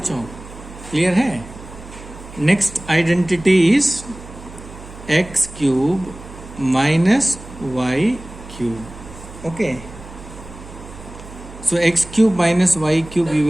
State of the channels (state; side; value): noise; right; hum, 16 dB below the sound